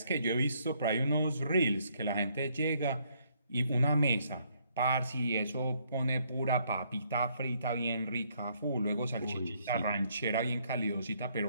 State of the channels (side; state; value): both; inverted; correlation -0.70